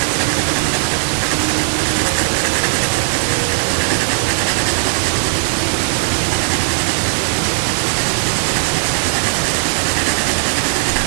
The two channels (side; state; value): left; silent; digital silence